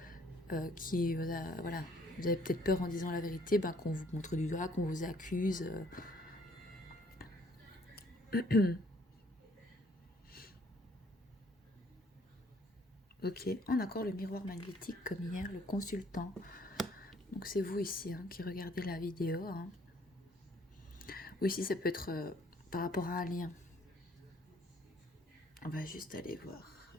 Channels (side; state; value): both; normal; correlation 0.62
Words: qui... Voilà. Vous avez peut-être peur en disant la vérité, ben, qu'on vous montre du doigt, qu'on vous accuse. Ok, on a encore le miroir magnétique comme hier, le consultant. Donc c'est vous ici hein, qui regardez la vidéo. Hein. Ou ici ça peut être par rapport à un lien. On va juste aller voir.